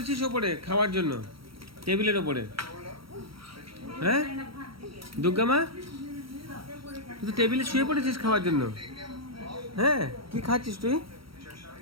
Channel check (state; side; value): late; left; 0.75 ms